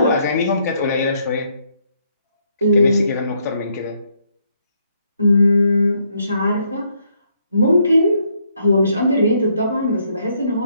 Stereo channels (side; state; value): both; inverted; correlation -0.73